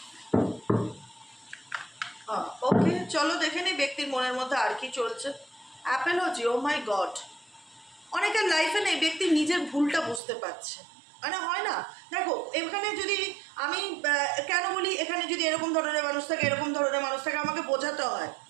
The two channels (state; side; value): drops out; left; at 10.2 s